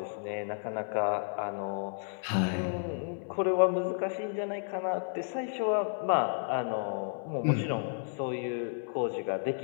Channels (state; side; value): silent; right; 56 dB below the other